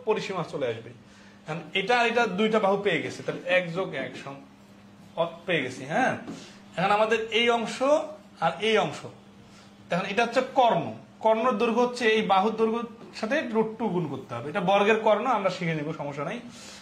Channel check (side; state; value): both; identical; correlation 1.00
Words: পরিসীমা চলে আসবে। এটা আর এটা 2টা বাহু পেয়ে গেছে, তাহলে 1 যোগ 1 পেয়ে গেছি। হ্যাঁ, এখন আমাদের এই অংশ আর এই অংশ, এখন এটা হচ্ছে কর্ণর দৈর্ঘ্য হচ্ছে এই বাহুর দৈর্ঘ্যের সাথে √2 গুণ করতে হবে। এটা বর্গের কর্ণ, আমরা শিখে নিব, সমস্যা নাই।